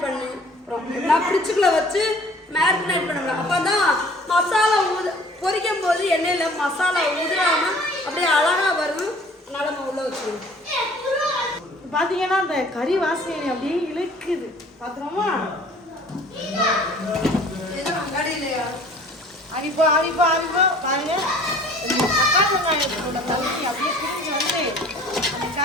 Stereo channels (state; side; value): normal; both; correlation 0.51